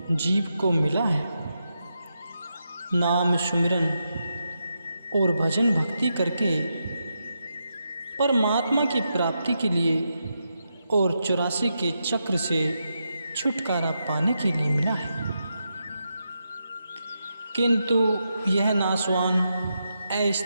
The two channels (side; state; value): both; inverted; correlation -0.85